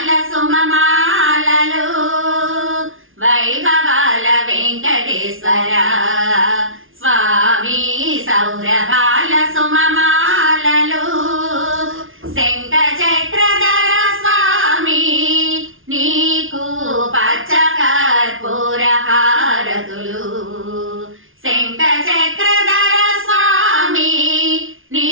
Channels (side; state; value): left; late; 0.58 ms